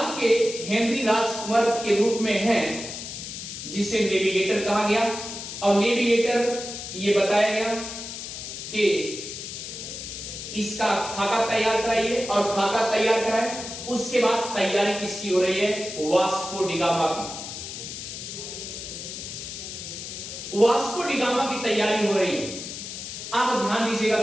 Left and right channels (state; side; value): noise; left; hiss, 9 dB below the sound